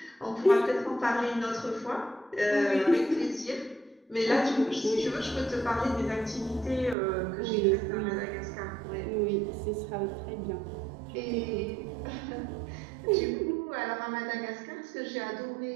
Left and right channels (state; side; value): drops out; left; at 7.0 s